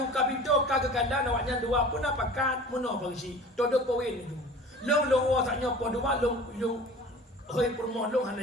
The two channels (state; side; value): normal; both; correlation 0.42